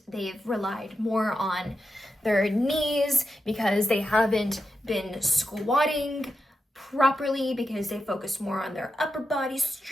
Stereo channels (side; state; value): both; normal; correlation 0.89